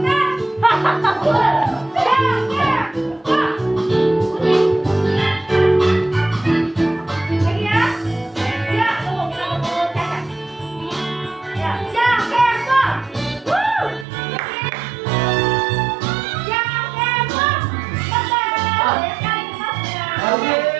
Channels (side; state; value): left; drops out; at 14.1 s